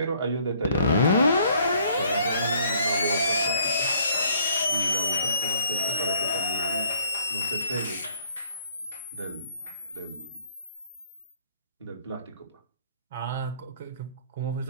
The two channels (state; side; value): inverted; both; correlation -0.63